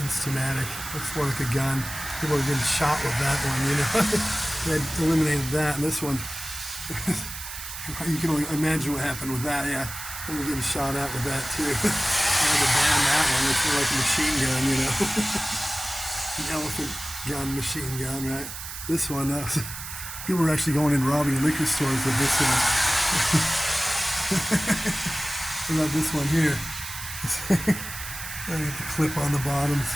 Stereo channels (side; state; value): right; noise; hiss, 9 dB below the sound